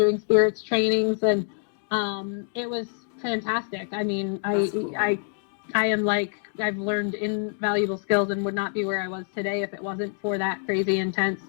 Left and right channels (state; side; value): silent; right; digital silence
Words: spirits trainings, and it was fantastic. I mean, Cool. I am like, I've learned invaluable skills and would not be where I was today if it wasn't for that crazy intense